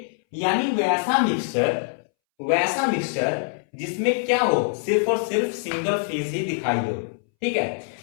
यानी वैसा मिक्सचर जिसमें क्या हो, सिर्फ और सिर्फ सिंगल फेज ही दिखाई दो। ठीक है,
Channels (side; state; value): right; silent; 63 dB below the other